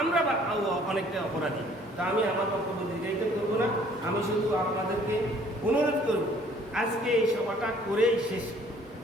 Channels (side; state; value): both; normal; correlation 0.58